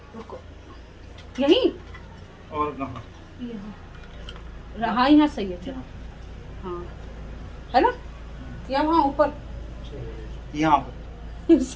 यही और कहाँ रहा, यहाँ सही है। चलो हाँ है ना, या वहाँ ऊपर यहाँ पर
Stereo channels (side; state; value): both; identical; correlation 1.00